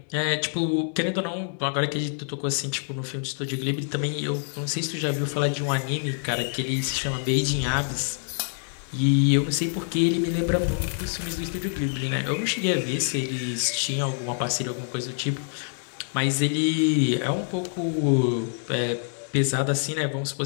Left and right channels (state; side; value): silent; right; digital silence